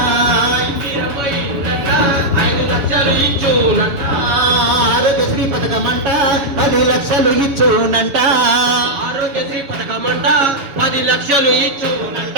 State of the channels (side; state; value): left; late; 7.0 ms